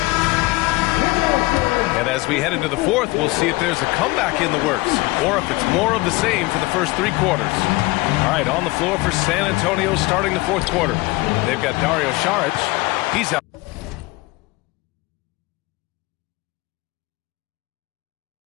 And as we head into the fourth, we'll see if there's a comeback in the works or if it's more of the same for the first three quarters. All right, on the floor for San Antonio starting the fourth quarter. They've got Dario Saric. He's out.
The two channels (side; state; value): right; quieter; 22.0 dB